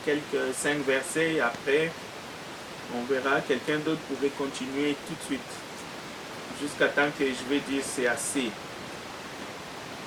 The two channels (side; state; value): both; identical; correlation 1.00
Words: quelques 5 versets et après, on verra. Quelqu'un d'autre pourrait continuer tout de suite. Jusqu'à temps que je vais dire c'est assez.